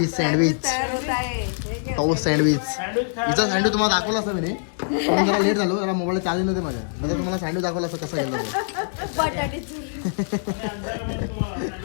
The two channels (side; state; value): right; silent; digital silence